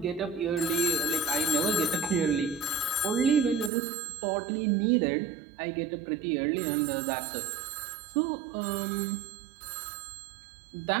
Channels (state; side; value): drops out; left; at 3.7 s